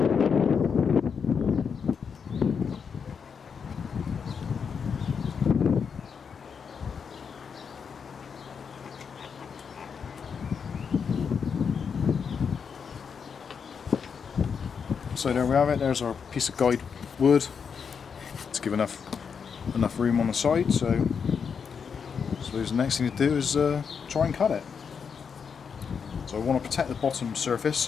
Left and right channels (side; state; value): right; quieter; 6.4 dB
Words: So there we have it, there's our piece of guide wood to give enough room on the side. So I suppose the next thing to do is try and cut it. So I want to protect the bottom surface,